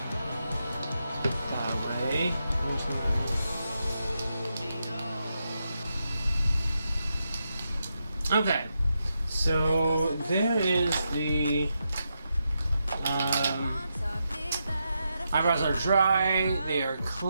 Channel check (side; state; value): both; inverted; correlation -0.85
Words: That way. Okay, so there is the eyebrows are dry, they are